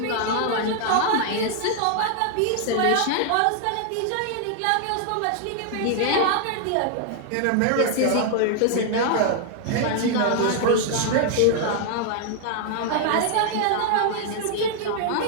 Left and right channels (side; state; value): both; different; correlation 0.00